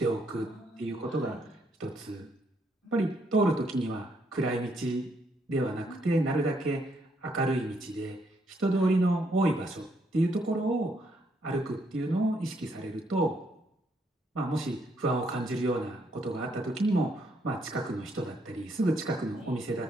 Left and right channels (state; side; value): normal; both; correlation 0.73